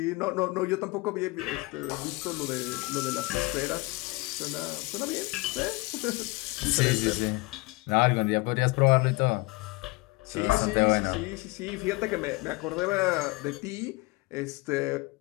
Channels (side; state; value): right; quieter; 24.6 dB